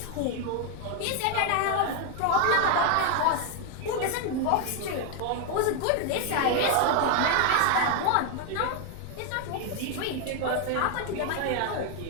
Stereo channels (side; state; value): both; different; correlation 0.01